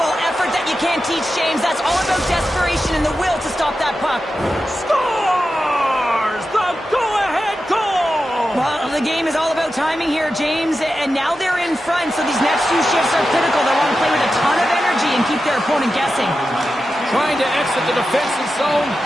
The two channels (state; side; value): normal; both; correlation 0.91